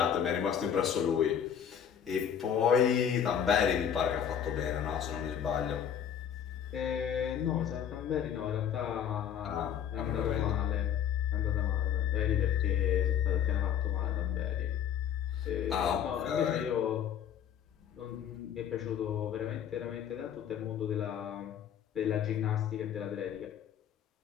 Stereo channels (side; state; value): right; quieter; 8.8 dB